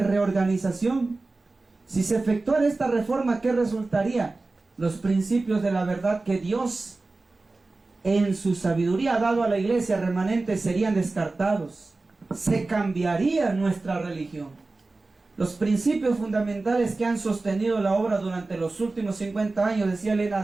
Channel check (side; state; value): left; quieter; 3.4 dB